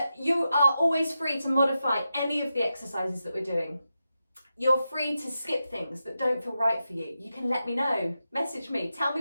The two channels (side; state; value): both; inverted; correlation -0.89